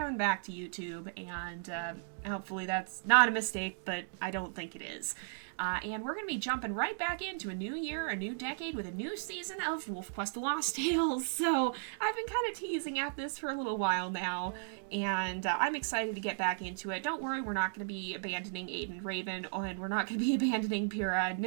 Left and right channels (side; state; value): left; silent; digital silence